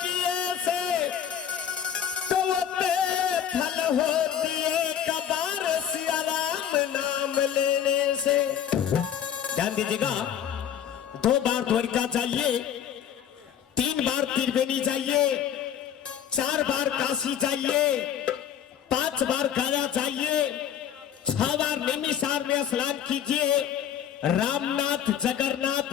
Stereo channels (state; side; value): quieter; right; 9.3 dB